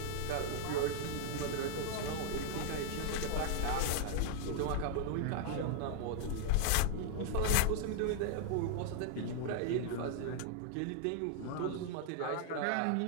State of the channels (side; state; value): both; different; correlation 0.00